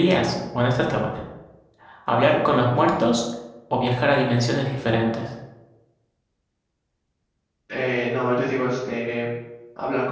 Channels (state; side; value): identical; both; correlation 1.00